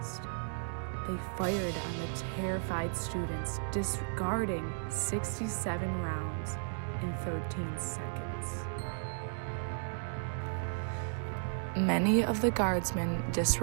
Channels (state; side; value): silent; left; digital silence